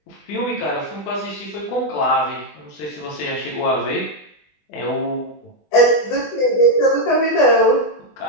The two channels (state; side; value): late; right; 20 ms